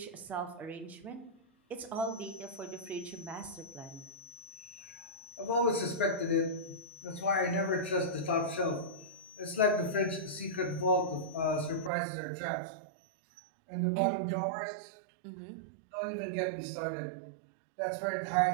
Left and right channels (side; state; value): left; drops out; at 11.9 s